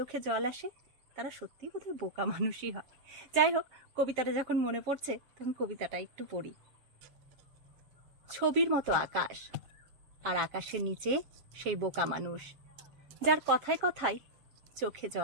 জল আসে তারা সত্যি বোধহয় বোকা মানুষই হয়। যাই হোক, কবিতাটা যখন মনে পড়ছে তখন কবিতাটা একটু পড়ি। ছবির মতো আকাশ, আর আকাশের নিচে সেই বোকা মানুষ যার কথায় কথায় চোখে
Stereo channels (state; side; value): late; left; 7.5 ms